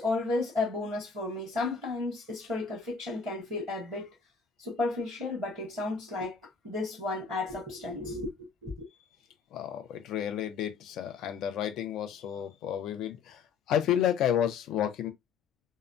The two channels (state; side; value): quieter; right; 5.6 dB